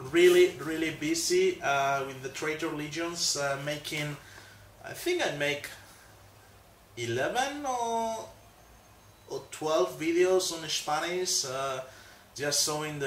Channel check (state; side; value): identical; both; correlation 1.00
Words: really busy with the Traitor Legions, making. I think I make 11 or 12 videos on Spanish, just showing